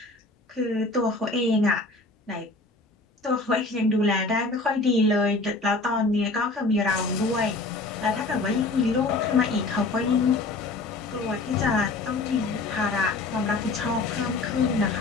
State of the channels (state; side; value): quieter; right; 3.3 dB